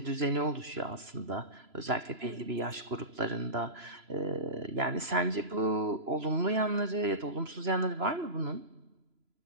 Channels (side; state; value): left; late; 3.0 ms